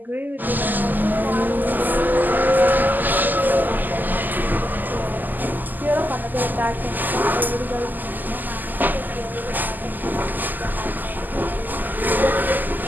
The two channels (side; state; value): left; late; 0.086 ms